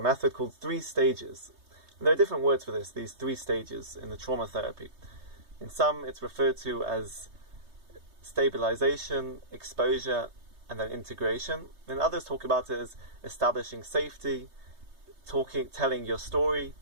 method called 3 stages. And there are different words for this, these 3 stages in the trauma therapy. In some, it's referred to as stabilization, exposure, and then integration. And others talk about it as establishing safety, telling your story,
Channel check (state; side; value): late; left; 3.3 ms